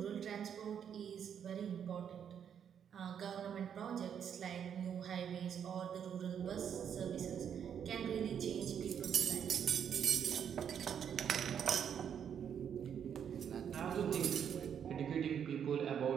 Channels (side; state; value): left; quieter; 8.3 dB